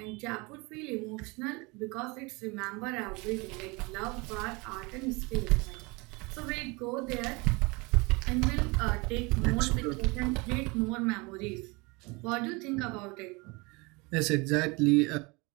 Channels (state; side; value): quieter; left; 26.8 dB